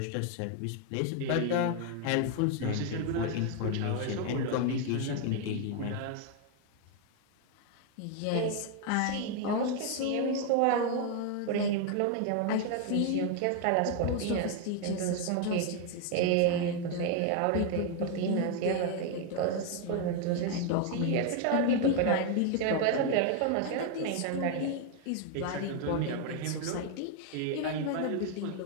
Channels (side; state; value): both; different; correlation 0.01